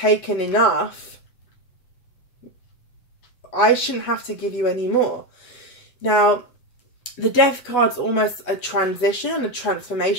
enough. I shouldn't have to give you any more. Now, the Death card's almost a transition, a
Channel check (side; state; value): right; late; 8.1 ms